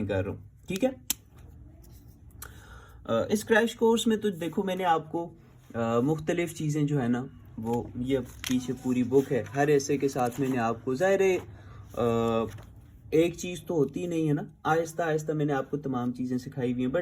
कर रहा हूँ, ठीक है। इस क्रैश कोर्स में तो देखो मैंने आपको मुख्तलिफ चीज़ें जो है ना, वो ये पीछे पूरी बुक है, हर ऐसे के साथ मैंने आपको ज़ाहिर एक चीज़ तो होती नहीं है ना, आहिस्ता आहिस्ता मैंने आपको तमाम चीज़ें सिखाई हुई हैं,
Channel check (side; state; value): both; identical; correlation 1.00